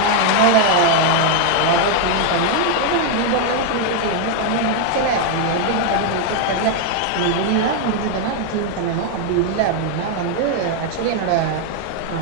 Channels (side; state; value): both; different; correlation 0.01